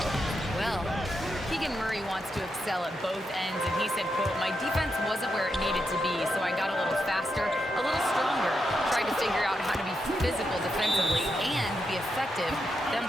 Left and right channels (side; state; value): both; normal; correlation 0.84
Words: Well, Keegan Murray wants to excel at both ends, and he said, quote, "My defense wasn't where it needed to be, so I got a little faster, a little stronger, tried to figure out how to be physical defensively and be effective. Them